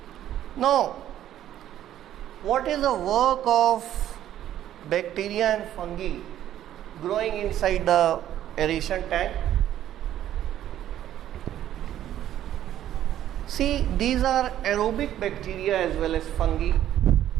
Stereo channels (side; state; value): left; quieter; 11.9 dB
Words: Now, what is the work of bacteria and fungi growing inside the aeration tank? See, these are aerobic bacteria as well as fungi.